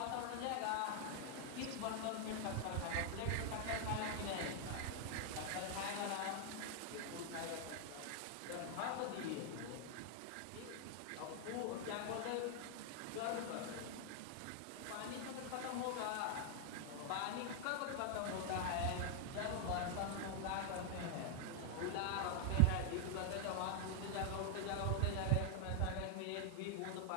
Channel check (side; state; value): both; different; correlation 0.00